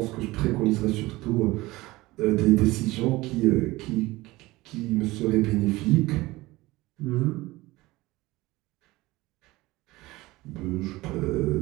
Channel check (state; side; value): quieter; left; 19.9 dB